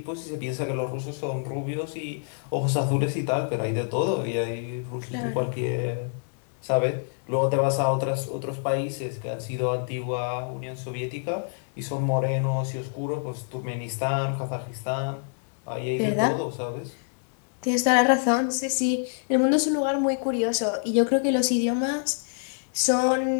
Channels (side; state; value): right; silent; digital silence